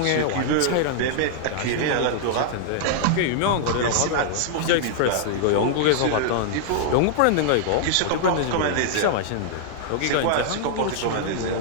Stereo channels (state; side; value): different; both; correlation -0.01